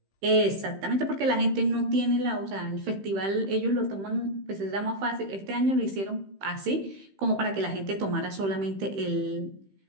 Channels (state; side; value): late; left; 15 ms